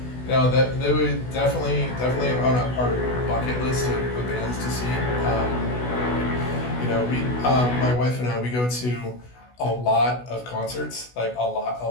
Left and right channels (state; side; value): late; right; 16 ms